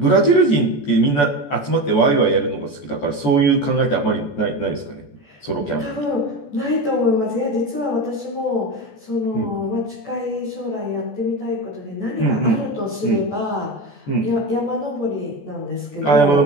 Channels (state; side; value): late; right; 14 ms